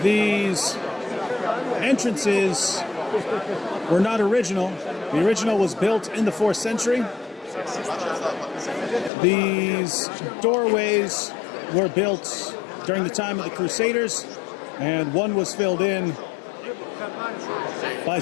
These entrances were not original. The original was built in the 4th century. These doorways were built during the time of the Crusaders, and one was filled in by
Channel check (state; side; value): drops out; right; at 9.1 s